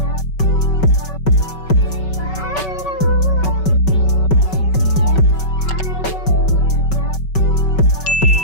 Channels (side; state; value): right; late; 5.3 ms